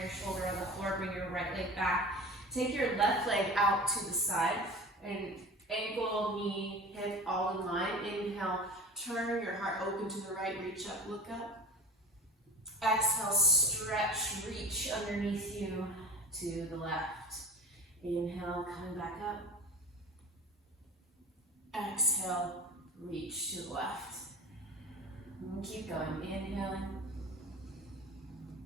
shoulder on the floor, bring your right leg back. Take your left leg out to the side and ankle, knee, hip all in line. Inhale, turn your heart open to the right, reach up, look up. Exhale, stretch, reach underneath you to the left. Inhale, coming back up. Exhale, reach to the left. And keep going, inhaling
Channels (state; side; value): normal; both; correlation 0.35